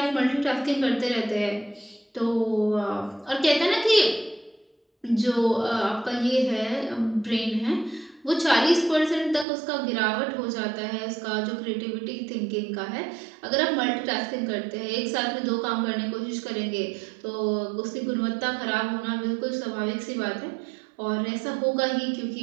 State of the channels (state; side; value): drops out; left; at 9.5 s